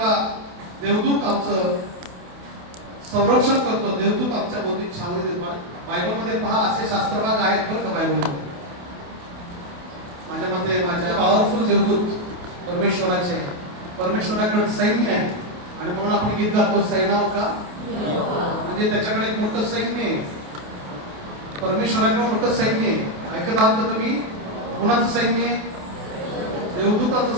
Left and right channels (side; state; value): left; late; 28 ms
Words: देवदूत आमचं संरक्षण करतो. देवदूत आमच्या भोवती छावणी देतो. बायबलमध्ये पहा असे शास्त्रभाग आहेत बरं का बायबलमध्ये. माझ्या मते माझ्या पॉवरफुल देवदूत परमेश्वराचे आहे. परमेश्वराकडे सैन्य आहे आणि म्हणून आपण गीत गातो सैन्याव का, म्हणजे त्याच्याकडे एक मोठं सैन्य आहे. परमेश्वराकडे मोठं सैन्य आहे. ऐकत आहात का तुम्ही? कोणाचं सैन्य आहे?